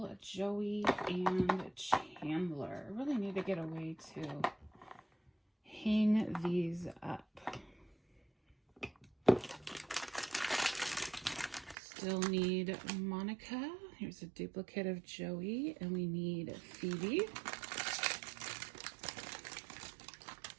Joey, and Chandler. I really need to get a way to hang these up. Still need Monica. Here's a duplicate of Joey, and we need Phoebe.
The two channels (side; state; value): left; drops out; at 11.8 s